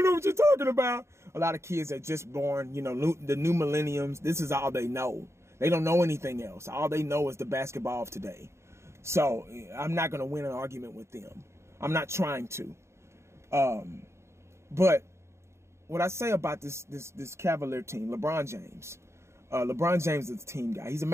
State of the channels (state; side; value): late; left; 0.13 ms